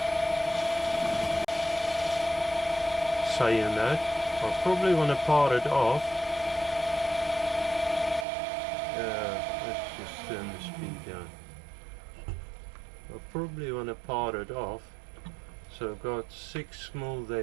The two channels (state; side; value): drops out; left; at 8.2 s